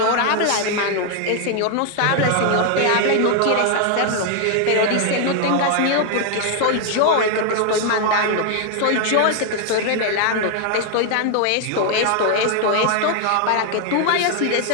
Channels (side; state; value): both; different; correlation 0.00